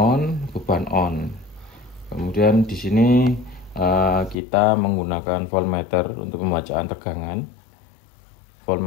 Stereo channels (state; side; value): drops out; right; at 4.4 s